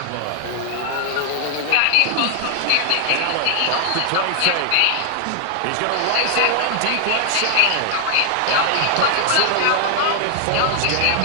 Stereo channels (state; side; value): different; both; correlation 0.00